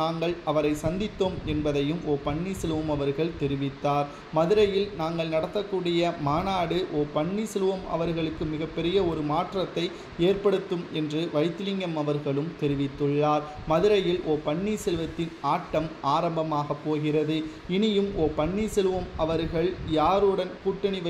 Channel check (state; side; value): identical; both; correlation 1.00